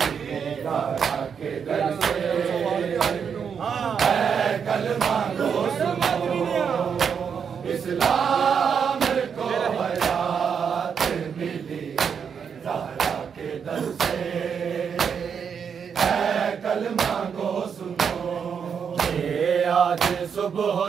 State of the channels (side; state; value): left; quieter; 6.9 dB